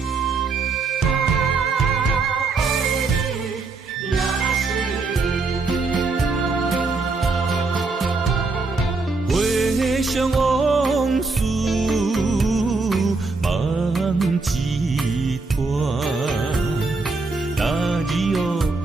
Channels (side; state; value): left; quieter; 3.9 dB